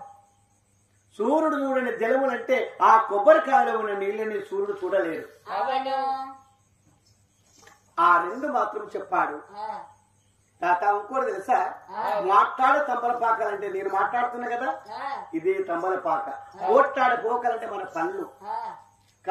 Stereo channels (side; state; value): both; identical; correlation 1.00